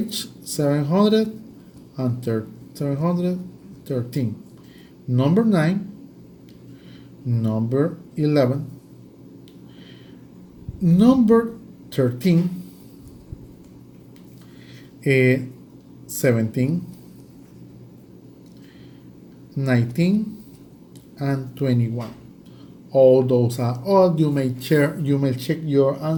713. Number 9, number 11, number 13, 17, 19, and 21. All those are all. You may check your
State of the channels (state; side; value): identical; both; correlation 1.00